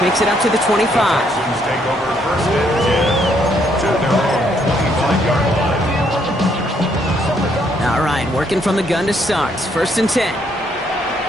makes it up to the 25. Texans take over 1st and 10 to their own 25-yard line. All right, working from the gun to start. 1st and 10. Here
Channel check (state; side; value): normal; both; correlation 0.71